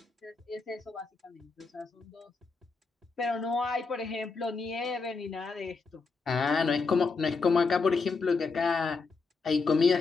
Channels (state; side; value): quieter; right; 4.4 dB